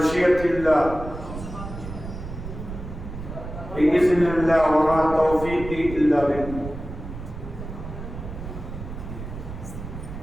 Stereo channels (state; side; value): noise; right; rumble, 9 dB below the sound